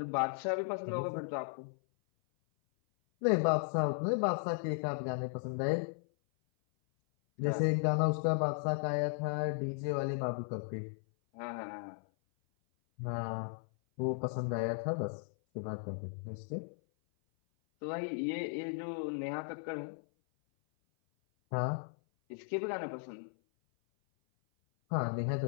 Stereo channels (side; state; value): right; silent; 54 dB below the other